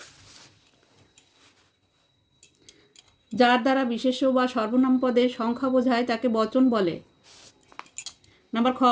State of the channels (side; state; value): both; identical; correlation 1.00